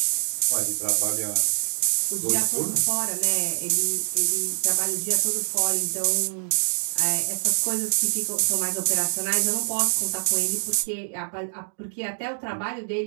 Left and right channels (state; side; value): silent; left; digital silence